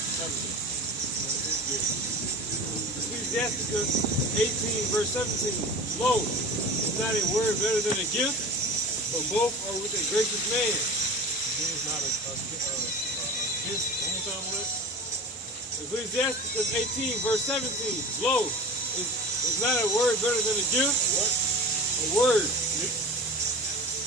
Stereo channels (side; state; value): both; normal; correlation 0.36